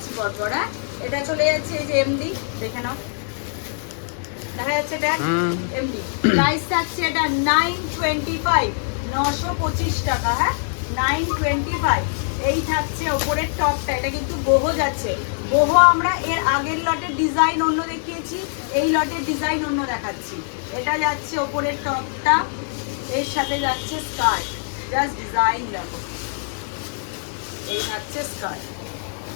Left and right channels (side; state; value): right; silent; digital silence